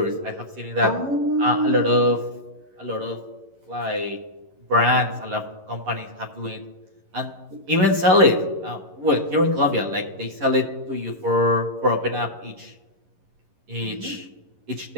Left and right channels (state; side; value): late; left; 11 ms